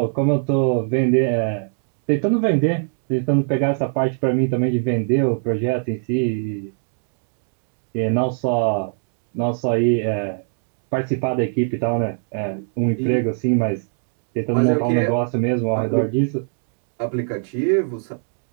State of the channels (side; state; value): left; silent; digital silence